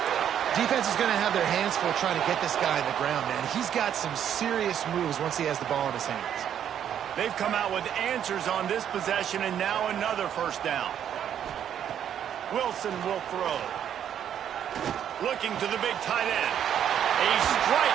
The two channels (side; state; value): left; quieter; 9.5 dB